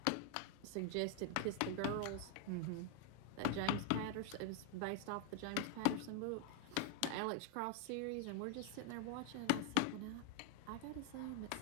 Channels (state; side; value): different; both; correlation 0.00